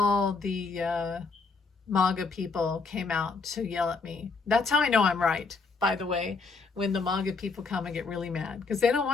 the MAGA people came out to yell at me. That's how I know I'm right, by the way, when the MAGA people come and get really mad, because they don't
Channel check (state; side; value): quieter; right; 4.3 dB